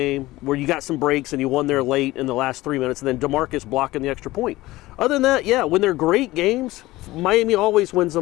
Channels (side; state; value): right; quieter; 18.2 dB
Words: where you got some breaks and you won there late in the last 3 minutes, and then DeMarcus blocking the extra point. Other than that, yeah, when they're great games, Miami always wins